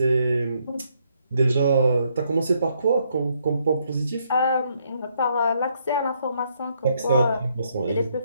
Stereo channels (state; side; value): inverted; both; correlation -0.73